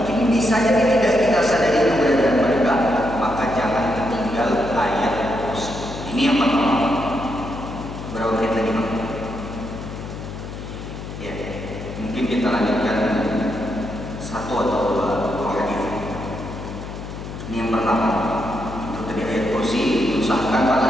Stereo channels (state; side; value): noise; left; hum, 9 dB below the sound